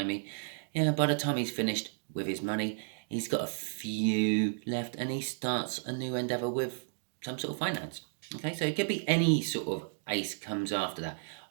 Yeah, by the time he's finished with his money, he's got a few left and he starts a new endeavour with some sort of finance. Okay, so it could be any sort of ace comes after that.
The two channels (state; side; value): silent; left; digital silence